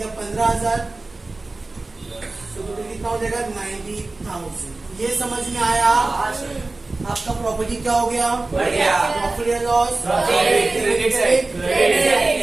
15,000, तो कितना हो जाएगा 90,000, ये समझ में आया। आपका प्रॉपर्टी क्या हो गया, प्रॉफिट या लॉस,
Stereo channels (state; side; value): quieter; left; 3.3 dB